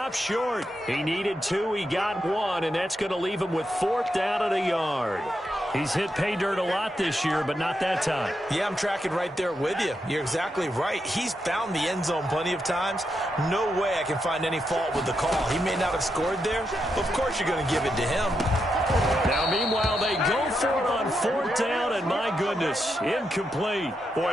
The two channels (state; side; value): normal; both; correlation 0.84